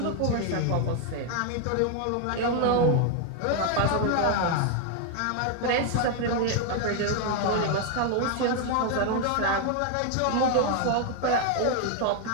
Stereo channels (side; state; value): both; different; correlation 0.01